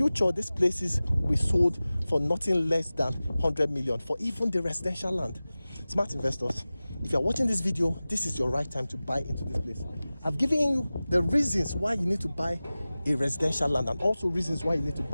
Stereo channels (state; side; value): inverted; both; correlation -0.97